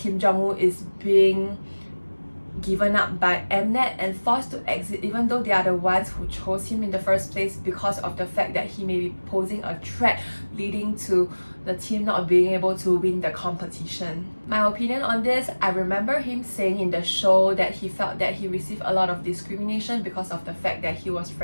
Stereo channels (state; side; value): inverted; both; correlation -1.00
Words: is being given up by Mnet and forced to exit, even though they are the ones who chose him in the first place, because of the fact that he may be posing a threat, leading to the team not being able to win the competition. My opinion on this, I remember him saying in the show that he felt that he received a lot of discrimination because of the fact that he was